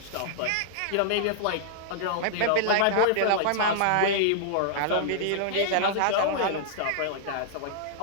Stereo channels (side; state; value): both; different; correlation -0.01